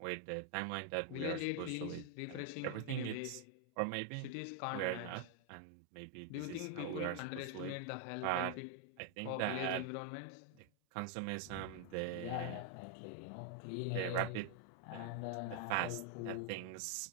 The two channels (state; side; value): different; both; correlation 0.00